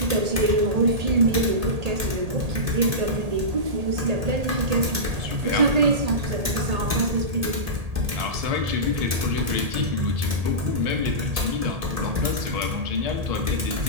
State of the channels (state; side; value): late; left; 1.7 ms